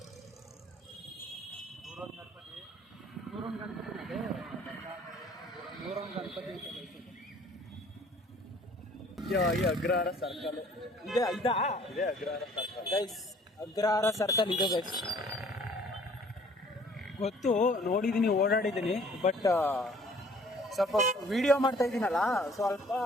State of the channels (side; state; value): both; normal; correlation 0.55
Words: ನೂರೊಂದು ಗಣಪತಿ ಈ ಅಗ್ರಹಾರ ಸರ್ಕಲ್ ಇದೆ. ಇದಾ ಇದೆ Agrahara circle guys, Agrahara circle ಇದೆ ಗೈಸ್. ಗೊತ್ತು, ನೋಡಿದ್ದೀನಿ, ಓಡಾಡಿದ್ದೀನಿ. ಬಟ್ ಸ್ವಲ್ಪ ವಿಡಿಯೋ ಮಾಡ್ತಾ ಇದ್ದೀನಲ್ಲ, ಸ್ವಲ್ಪ